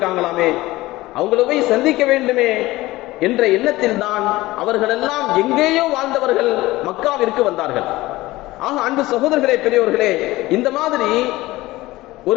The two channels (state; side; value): quieter; right; 18.5 dB